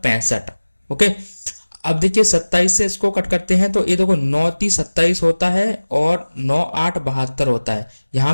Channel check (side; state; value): both; inverted; correlation -1.00